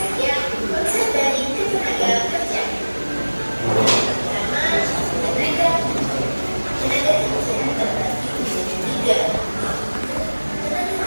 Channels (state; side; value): inverted; both; correlation -1.00